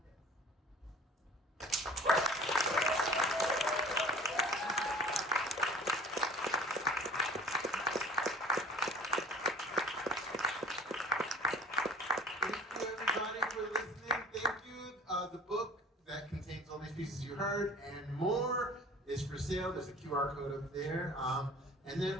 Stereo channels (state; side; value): normal; both; correlation 0.47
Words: The book that contains all these pieces you heard and more is for sale. There's a QR code up there. And then